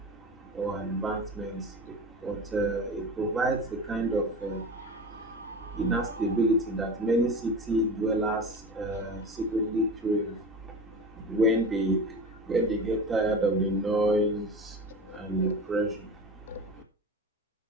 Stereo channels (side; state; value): both; normal; correlation 0.31